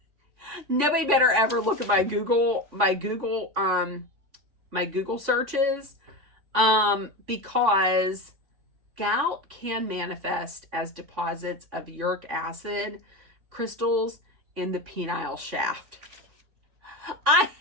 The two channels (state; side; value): late; left; 3.5 ms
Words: Nobody better ever look at my Google searches, because gout can manifest as deposits of uric acid crystals in the penile shaft. I